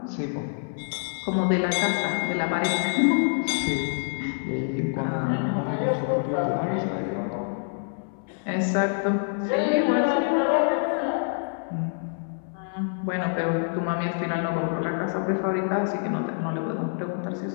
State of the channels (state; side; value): silent; right; 61 dB below the other